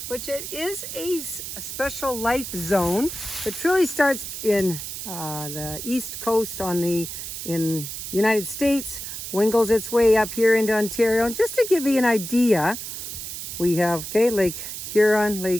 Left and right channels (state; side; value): noise; right; hiss, 7 dB below the sound